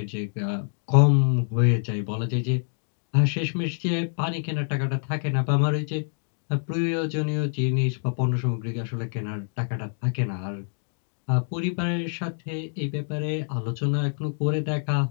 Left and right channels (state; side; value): silent; right; digital silence